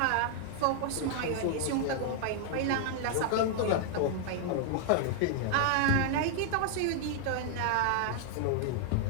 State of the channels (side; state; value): both; different; correlation 0.00